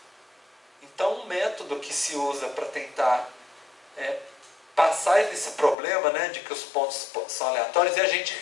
Então, um método que se usa para tentar passar esse problema, né, de que os pontos são aleatórios, é a gente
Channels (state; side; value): drops out; right; at 5.8 s